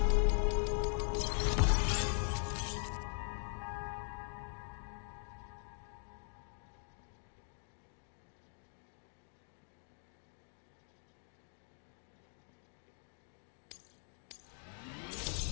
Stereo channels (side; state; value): right; silent; 50 dB below the other